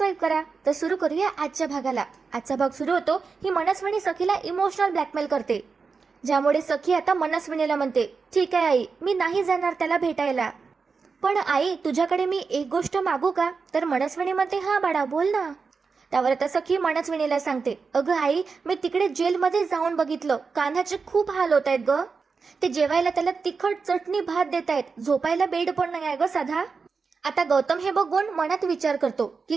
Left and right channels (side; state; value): left; quieter; 4.9 dB